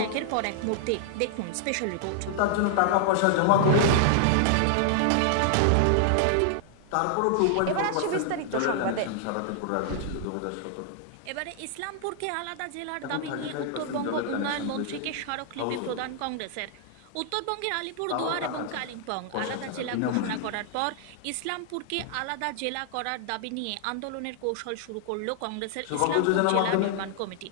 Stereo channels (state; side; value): different; both; correlation 0.00